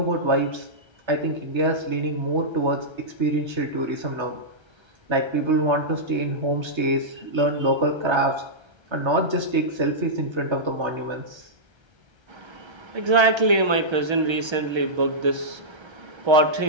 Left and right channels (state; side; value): late; left; 1.3 ms